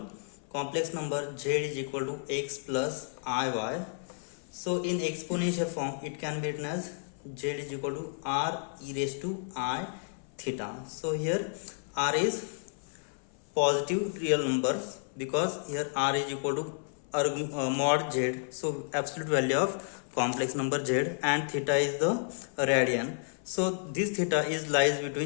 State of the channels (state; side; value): silent; right; 55 dB below the other